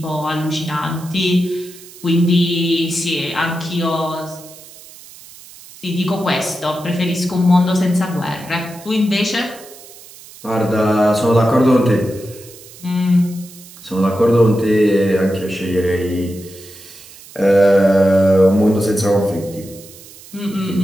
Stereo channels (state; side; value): noise; right; hiss, 20 dB below the sound